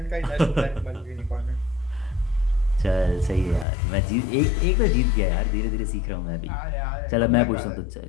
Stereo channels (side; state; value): right; drops out; at 3.7 s